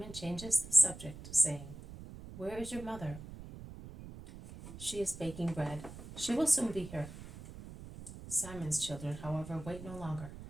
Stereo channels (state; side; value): noise; right; rumble, 13 dB below the sound